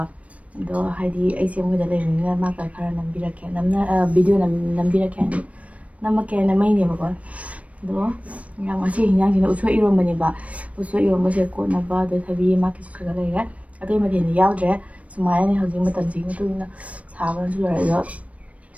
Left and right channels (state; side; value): late; left; 0.066 ms